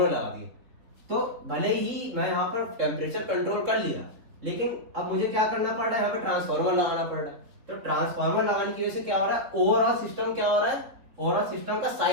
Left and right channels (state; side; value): late; left; 3.9 ms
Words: लगा दिया। तो भले ही मैं यहाँ पर टेम्परेचर कंट्रोल कर लिया, लेकिन अब मुझे क्या करना पड़ रहा है, यहाँ पे ट्रांसफार्मर लगाना पड़ रहा है। तो ट्रांसफार्मर लगाने की वजह से क्या हो रहा है, ओवरऑल सिस्टम क्या हो रहा है, ओवरऑल सिस्टम का